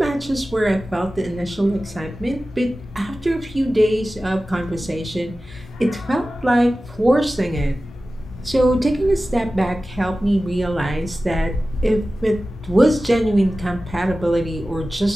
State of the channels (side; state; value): both; normal; correlation 0.95